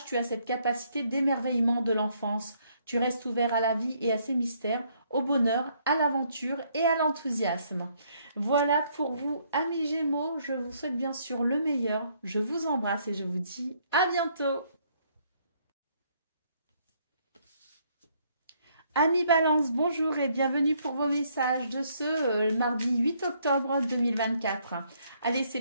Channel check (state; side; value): inverted; both; correlation -0.69